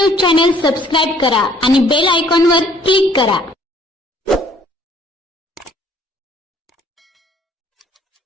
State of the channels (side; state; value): both; normal; correlation 0.59